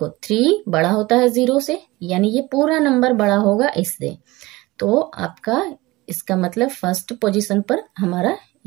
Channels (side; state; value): left; quieter; 20.6 dB